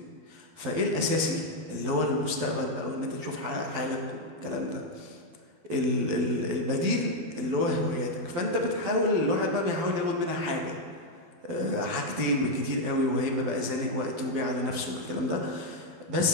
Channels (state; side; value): late; left; 12 ms